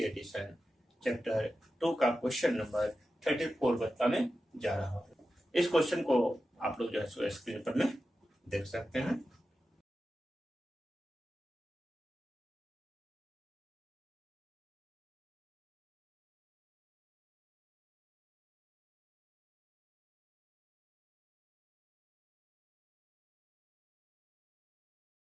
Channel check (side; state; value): both; normal; correlation 0.92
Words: एडिशन चैप्टर 2 का क्वेश्चन नंबर 34 बताने जा रहा हूँ। इस क्वेश्चन को आप लोग जो है सो स्क्रीन पर में देख सकते हैं।